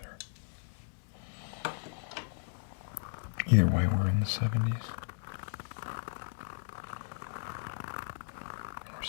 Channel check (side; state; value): right; silent; digital silence